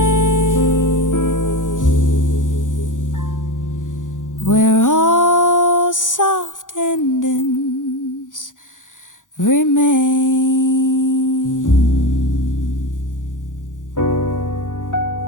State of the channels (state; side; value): late; right; 0.87 ms